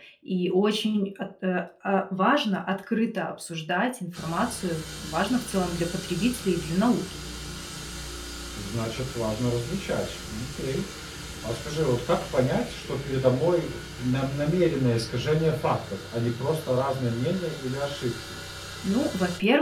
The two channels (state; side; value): identical; both; correlation 1.00